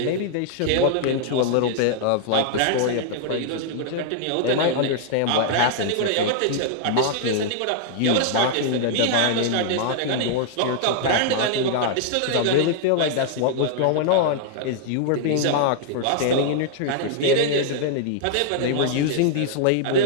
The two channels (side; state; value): both; different; correlation 0.00